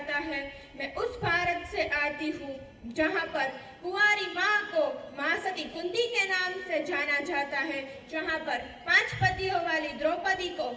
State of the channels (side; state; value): both; identical; correlation 1.00